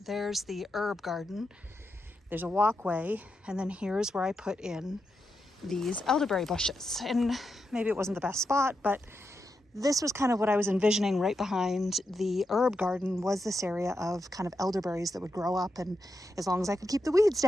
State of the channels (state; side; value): normal; both; correlation 0.86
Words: there's the herb garden, there's a walkway, and then here's where I put in these elderberry bushes. And maybe it wasn't the best spot, but this was kind of what I was envisioning. Right behind the herb garden was this area of kind of elderberries that would grow up, and as long as I could keep the weeds